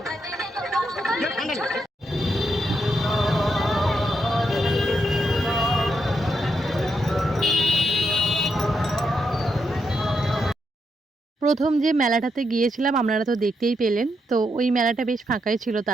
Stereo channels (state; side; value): normal; both; correlation 0.81